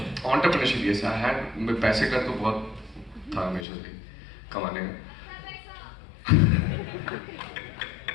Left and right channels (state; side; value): drops out; right; at 3.7 s